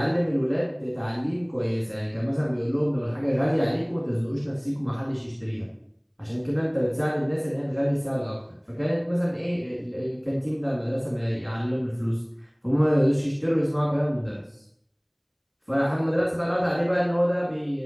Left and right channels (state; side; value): identical; both; correlation 1.00